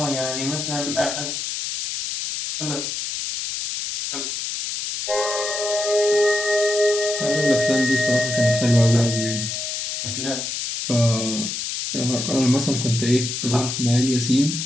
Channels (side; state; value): left; noise; hiss, 4 dB below the sound